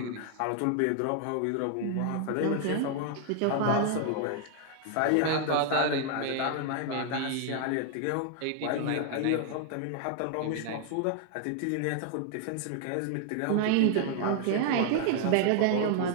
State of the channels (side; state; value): both; different; correlation 0.00